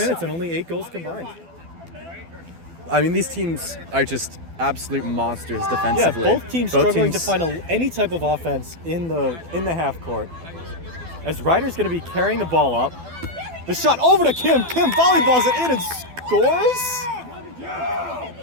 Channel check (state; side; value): late; left; 12 ms